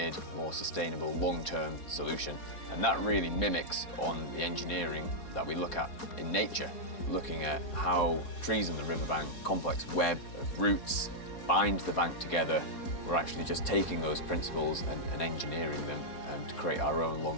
more sustainable long-term solution. And that really mimics on the engineering that we look at in nature, looking at how trees on the riverbank, complex web of roots, bind the bank together. We're actually just taking those principles and engineering them to create our own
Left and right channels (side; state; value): right; late; 4.2 ms